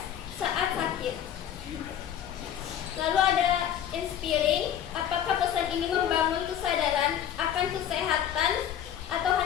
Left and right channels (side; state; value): right; quieter; 10.0 dB